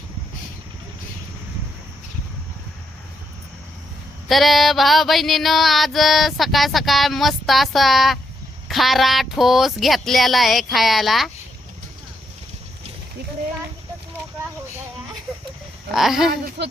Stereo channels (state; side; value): normal; both; correlation 0.78